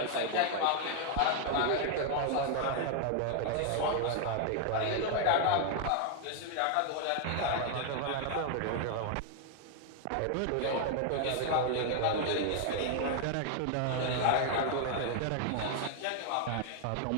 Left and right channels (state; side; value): different; both; correlation 0.00